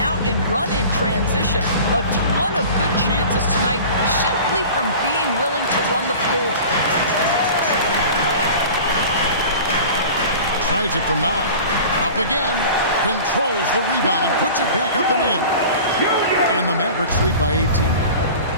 out and run in transition. A ton of good chances tonight simply from being willing to run the floor. Tries it from 9. Up again. Controls the rebound and puts it back up and in. And the Mavericks lead by 18.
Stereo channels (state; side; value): inverted; both; correlation -0.39